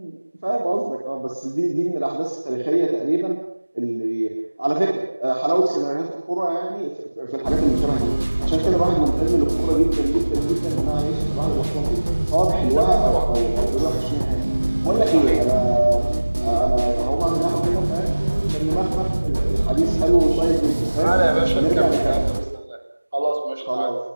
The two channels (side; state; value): both; inverted; correlation -1.00